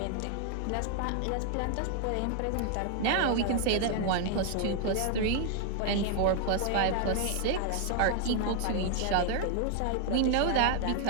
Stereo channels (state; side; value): different; both; correlation 0.00